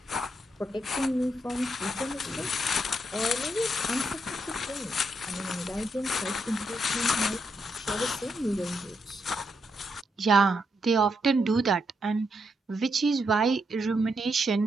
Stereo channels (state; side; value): normal; both; correlation 0.80